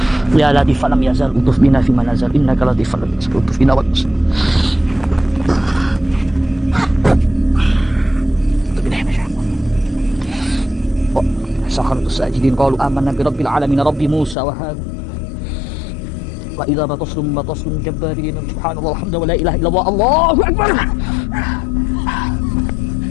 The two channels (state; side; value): drops out; right; at 14.4 s